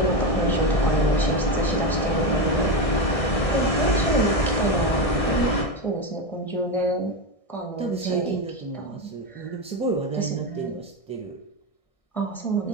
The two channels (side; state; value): right; late; 1.6 ms